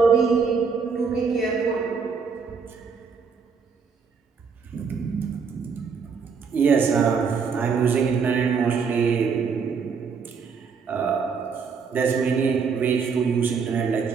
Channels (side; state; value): left; quieter; 5.7 dB